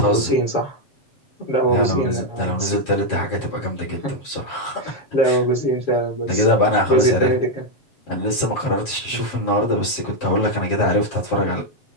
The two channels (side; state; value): right; late; 7.4 ms